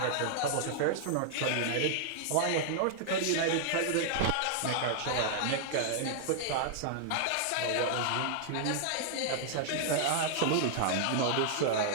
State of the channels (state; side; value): different; both; correlation -0.01